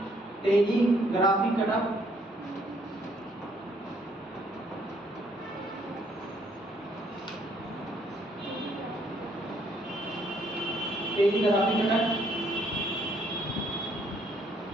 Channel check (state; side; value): normal; both; correlation 0.67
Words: टेलीग्राफिक कटक, टेलीग्राफिक कटक,